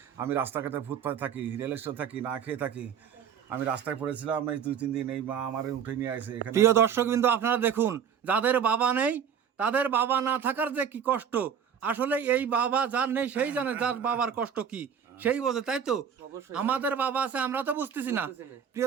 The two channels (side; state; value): left; quieter; 7.8 dB